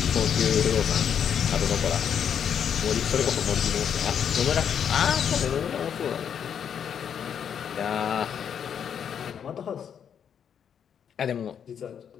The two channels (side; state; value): right; quieter; 8.1 dB